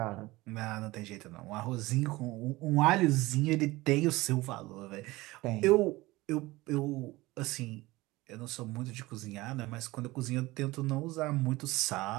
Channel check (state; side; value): quieter; left; 20.1 dB